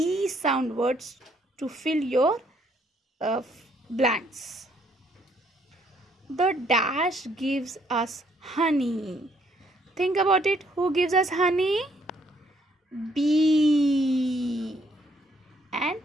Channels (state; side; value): normal; both; correlation 0.68